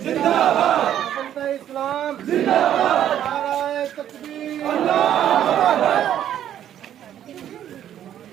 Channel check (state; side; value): quieter; left; 10.8 dB